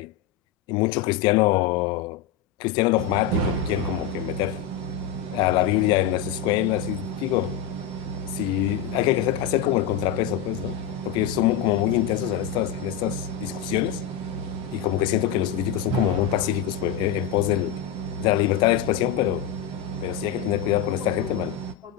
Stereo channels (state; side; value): quieter; right; 8.9 dB